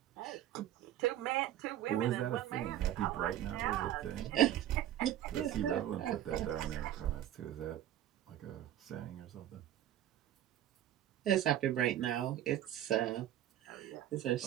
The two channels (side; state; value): left; quieter; 12.1 dB